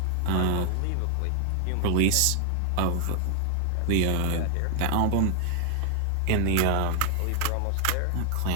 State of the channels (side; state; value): both; different; correlation 0.00